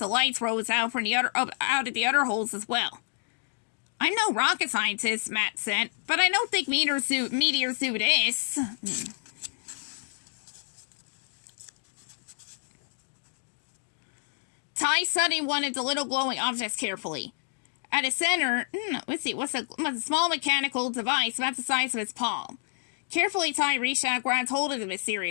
of lights rose out from out of the other holes as well. I'm no rocket scientist, Matt said, but I don't think meteors do this. Ty studied one of the little glowing objects carefully. At its center, was a small mechanical device about the size of his palm. Carefully, Ty reached out and grabbed hold of the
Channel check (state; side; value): silent; right; digital silence